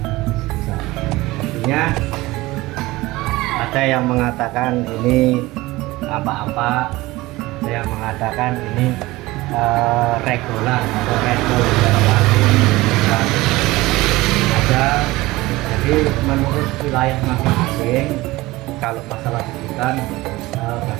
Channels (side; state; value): left; quieter; 19.6 dB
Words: sebutan. Artinya ada yang mengatakan ini apa-apa, ada yang mengatakan ini regulan atau regol ada. Jadi menurut wilayah masing-masing, kalau masalah sebutan